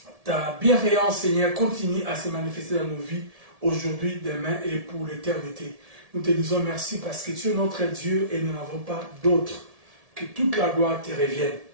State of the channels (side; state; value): left; late; 1.7 ms